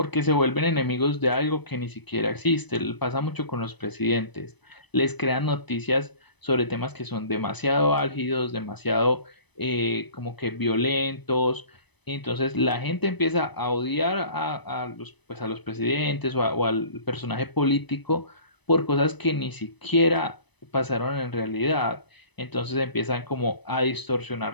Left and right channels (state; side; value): late; right; 0.99 ms